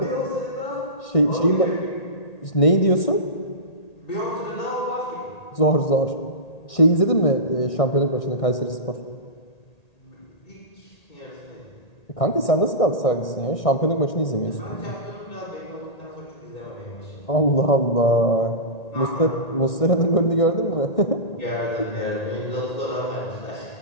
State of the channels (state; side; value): late; right; 1.6 ms